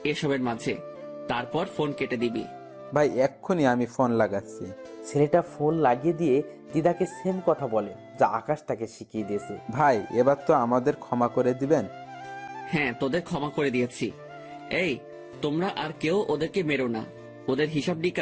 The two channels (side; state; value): both; identical; correlation 1.00